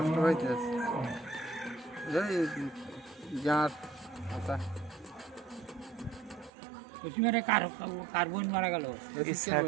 হইতে আছে এই গাঁট কথা। কার্বন মারা গেল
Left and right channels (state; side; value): drops out; left; at 6.5 s